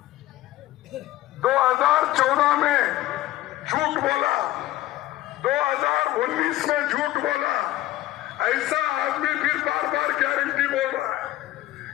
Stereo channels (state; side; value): quieter; right; 15.8 dB